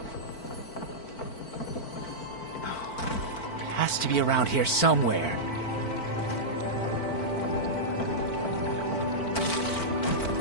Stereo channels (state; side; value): late; right; 4.5 ms